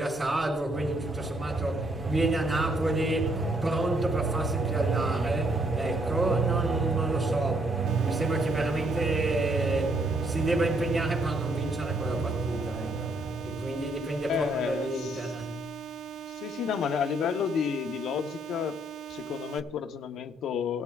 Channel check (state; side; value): normal; both; correlation 0.70